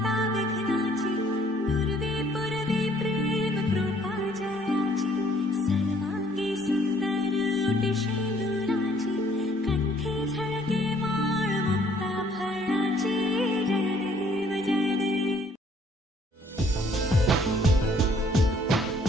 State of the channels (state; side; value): normal; both; correlation 0.62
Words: विघ्नाची पूर्वे पूर्वे प्रेम कृपा जयाची सर्वांगी सुंदर ओटी शेंदुराची कंठी झळके माळ मुक्ता फळाची जय देव जय देव.